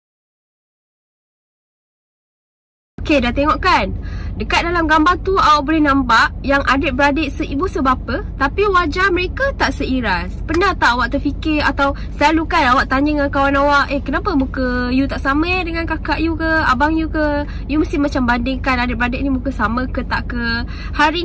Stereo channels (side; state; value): both; identical; correlation 1.00